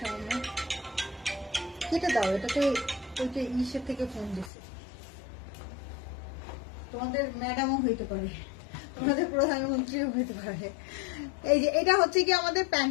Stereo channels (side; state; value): right; drops out; at 4.5 s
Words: কেটে দাও, এটাতে ওইটা ইসের থেকে ফোন দিছে, তোমাদের ম্যাডামও হইতে পারে। আমাদের প্রধানমন্ত্রীও হতে পারে। এই যে এটা হচ্ছে কি আমাদের